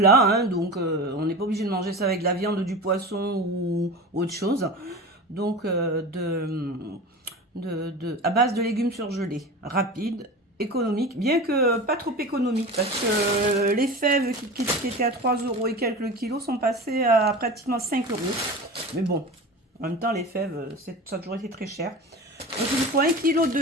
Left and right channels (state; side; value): normal; both; correlation 0.31